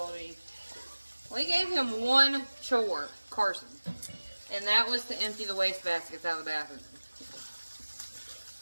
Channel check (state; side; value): inverted; both; correlation -1.00